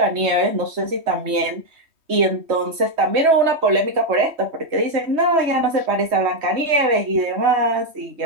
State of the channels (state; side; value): late; left; 3.2 ms